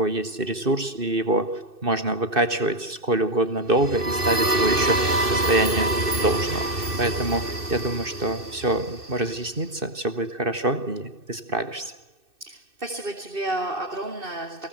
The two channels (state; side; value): late; left; 2.6 ms